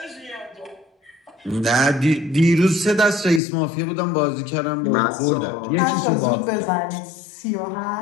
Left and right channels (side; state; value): right; drops out; at 3.4 s